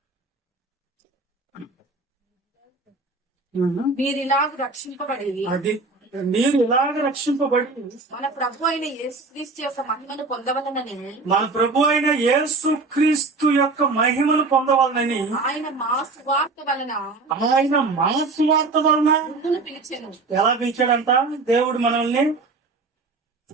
మీరు ఇలాగ రక్షింపబడి అది మీరు ఇలాగ రక్షింపబడి మన ప్రభు అయిన యేసుక్రీస్తు యొక్క మహిమను పొందవలనని మన ప్రభు అయిన యేసుక్రీస్తు యొక్క మహిమను పొందవాలని ఆయన మా సువార్త వలన ముందును పిలిచెను. ఎలా పిలిచాడంట దేవుడు మనల్ని?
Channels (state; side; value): quieter; left; 3.8 dB